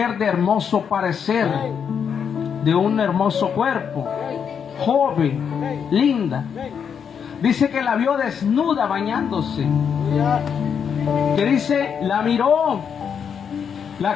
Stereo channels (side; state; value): right; quieter; 7.3 dB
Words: de hermoso parecer, de un hermoso cuerpo, joven, linda, dice que la vio desnuda bañándose, Aleluya. que dice, la miró,